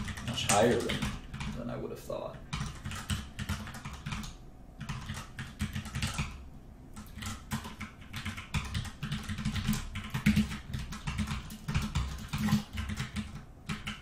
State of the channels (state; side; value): identical; both; correlation 1.00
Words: much higher than I would have thought.